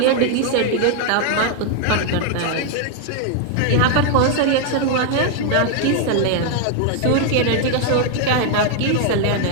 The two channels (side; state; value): both; different; correlation 0.00